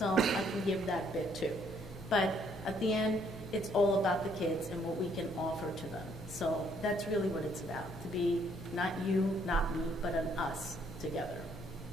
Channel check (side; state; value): both; normal; correlation 0.67